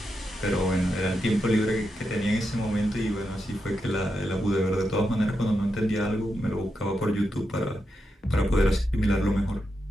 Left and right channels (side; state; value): both; normal; correlation 0.86